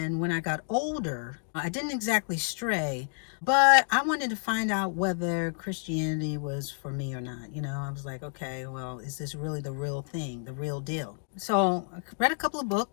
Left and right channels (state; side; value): silent; right; 58 dB below the other